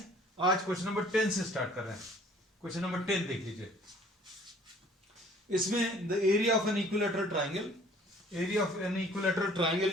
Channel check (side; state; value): both; normal; correlation 0.54